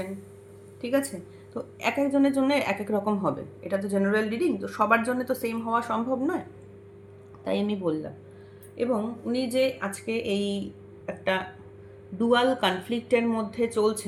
ঠিক আছে? তো এক একজনের জন্য এক এক রকম হবে, এটা তো জেনারেল রিডিং, তো সবার জন্য তো সেম হওয়া সম্ভব নয়, তাই আমি বললাম। এবং উনি যে আজকে এই একটা ডুয়াল কনফ্লিক্টের মধ্যে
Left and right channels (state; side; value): identical; both; correlation 1.00